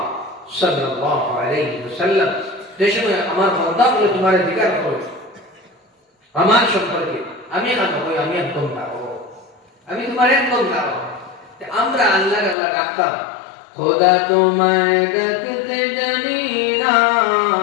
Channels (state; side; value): drops out; right; at 12.6 s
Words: সাল্লাল্লাহু আলাইহি ওয়াসাল্লাম, যে সময় আমার বান্দা বলে তোমার জিজ্ঞাসা করে আমার সম্পর্কে, আমি এখন কই আমি একদম দাও, আমি তোমার একদম দাও। আমরা আল্লাহ আল্লাহ ডাকতাম, খোদা তোমায় ডাকতে জানি না,